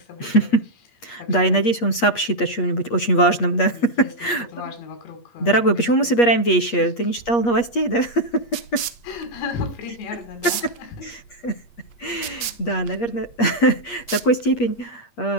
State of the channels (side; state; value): right; late; 8.5 ms